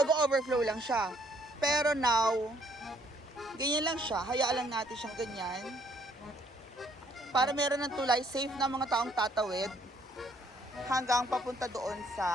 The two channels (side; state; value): both; normal; correlation 0.65